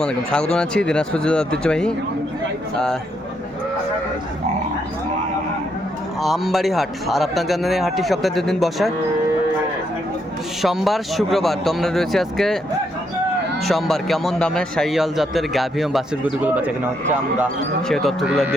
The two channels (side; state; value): both; normal; correlation 0.76